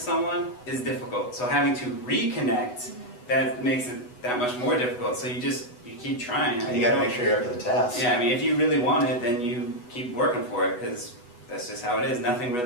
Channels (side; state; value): right; late; 8.1 ms